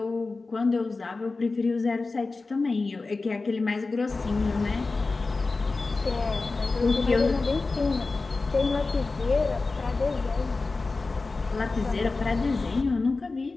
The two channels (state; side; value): quieter; right; 3.7 dB